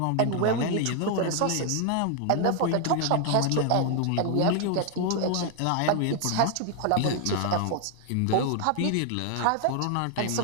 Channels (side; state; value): both; different; correlation 0.00